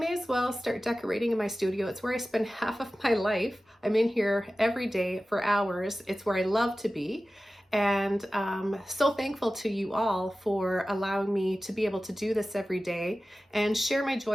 as well start decorating in my studio. It's where I spend half of my life. I'm in here every day for hours. It's where I love to be. And so thankful to you all for allowing me to be able to do this every day and share my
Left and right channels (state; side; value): normal; both; correlation 0.95